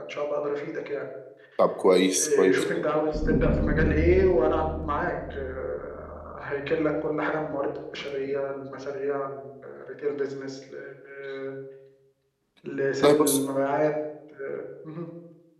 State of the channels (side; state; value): both; identical; correlation 1.00